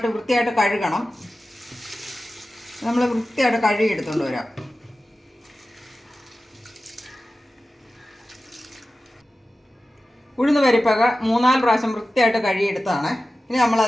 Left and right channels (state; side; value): normal; both; correlation 0.95